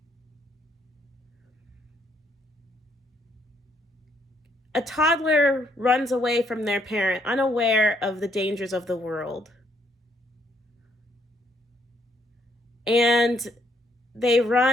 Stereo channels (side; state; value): both; normal; correlation 0.71